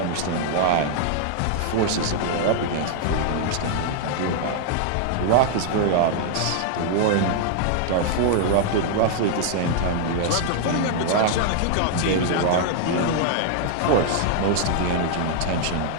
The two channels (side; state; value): both; different; correlation 0.00